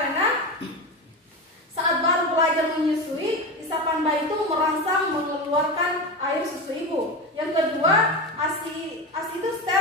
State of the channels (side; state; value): both; normal; correlation 0.21